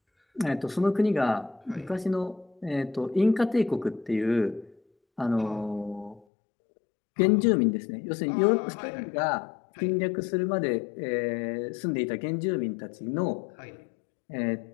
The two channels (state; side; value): drops out; right; at 6.2 s